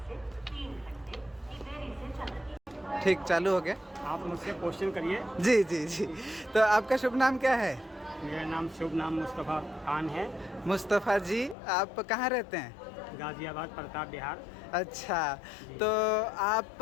से 3 घंटे की देरी से चल रही है। ठीक, चालू हो गया। आप मुझसे क्वेश्चन करिए। जी जी जी। तो आपका शुभ नाम क्या है? मेरा नाम शुभ नाम मुस्तफ़ा खान है। मुस्तफ़ा जी, आप कहाँ रहते हैं? गाज़ियाबाद, प्रताप बिहार। अच्छा, तो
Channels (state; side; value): drops out; right; at 11.6 s